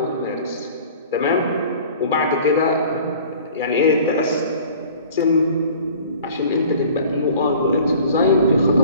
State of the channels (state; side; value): inverted; both; correlation -0.47